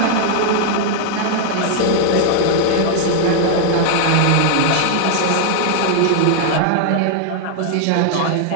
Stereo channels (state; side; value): different; both; correlation 0.00